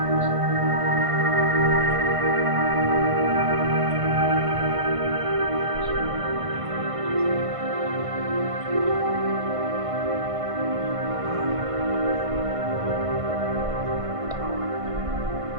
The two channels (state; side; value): late; left; 1.5 ms